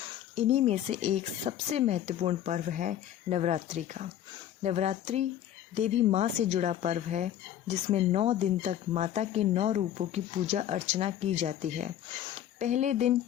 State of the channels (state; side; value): quieter; right; 11.3 dB